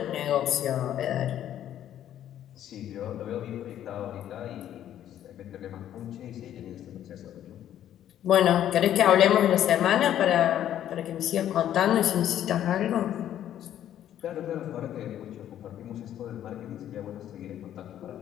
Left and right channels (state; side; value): quieter; right; 11.2 dB